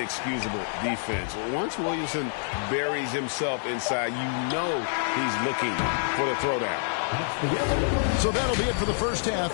defense. Once Williamson buries himself inside, you know he's looking for the throwdown. So that'll be it for the first half.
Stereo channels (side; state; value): right; silent; 60 dB below the other